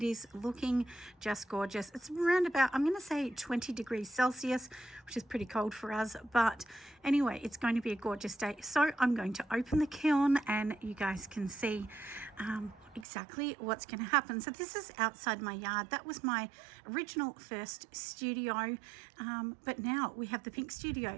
is looking just gorgeous. It's around about, I'm going to say 20 degrees Celsius, which is pretty cold for us, but anyway, it's going to be a gorgeous day. So I'm going to open the kiln and you guys can see exactly what's going to happen. So this is outside my yard. That was my original first studio, but now we have the pink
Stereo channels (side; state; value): left; drops out; at 13.1 s